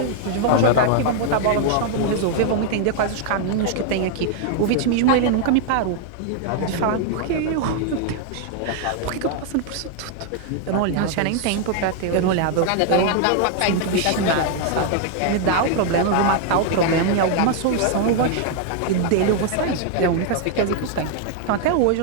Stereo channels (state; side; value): different; both; correlation 0.00